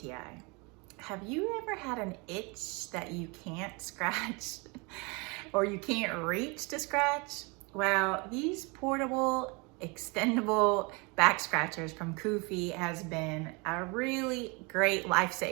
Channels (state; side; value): quieter; left; 29.3 dB